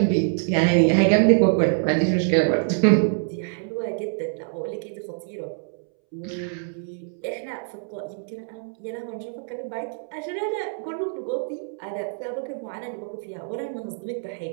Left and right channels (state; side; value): silent; left; 62 dB below the other